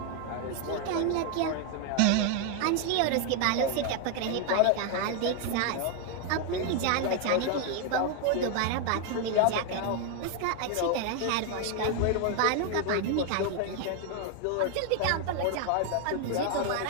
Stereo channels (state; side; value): different; both; correlation 0.01